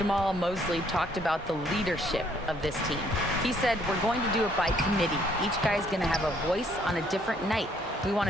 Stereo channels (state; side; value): normal; both; correlation 0.65